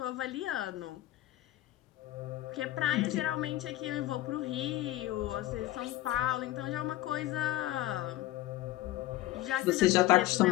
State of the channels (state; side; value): quieter; right; 16.3 dB